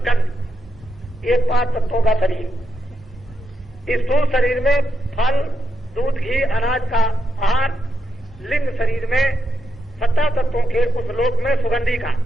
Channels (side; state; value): both; normal; correlation 0.84